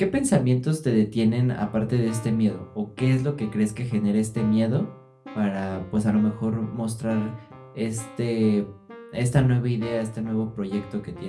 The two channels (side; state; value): both; identical; correlation 1.00